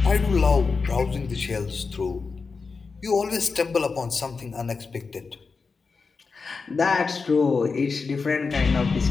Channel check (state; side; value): quieter; right; 4.7 dB